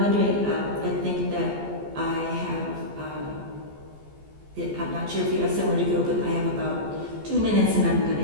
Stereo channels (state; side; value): late; left; 14 ms